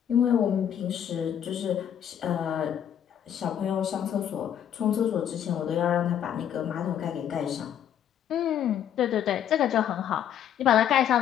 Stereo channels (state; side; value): quieter; right; 9.7 dB